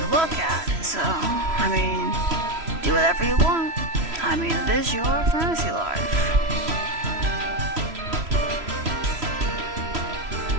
look at, so I mean, do whatever you want. I mean, it is your fantasy life.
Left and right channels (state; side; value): late; left; 3.0 ms